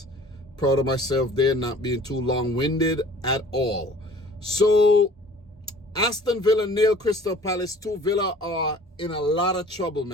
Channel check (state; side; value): normal; both; correlation 0.49